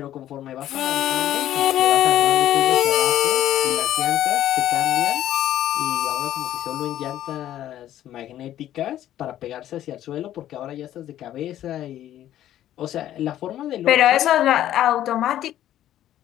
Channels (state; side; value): quieter; right; 12.3 dB